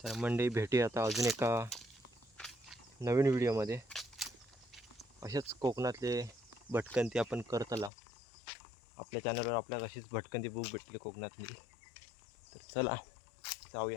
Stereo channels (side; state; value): right; drops out; at 7.9 s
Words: तर मंडळी भेटूया आता अजून एका नवीन व्हिडिओमध्ये. अशाच कोकणातले भटकंती आपण करतला. आपल्या चॅनलवर आपल्याला अशीच भटकंती बुक भेटली कोकणातली. तर चला